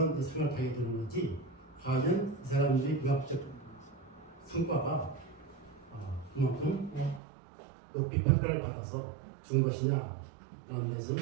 생각하게 되는 거지 과연 이 사람들이 문학적 성과가 그만큼 높이 평가를 받아서 준 것이냐 라는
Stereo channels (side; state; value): left; drops out; at 7.2 s